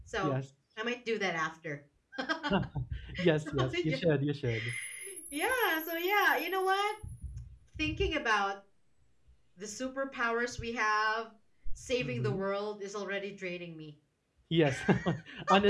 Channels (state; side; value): identical; both; correlation 1.00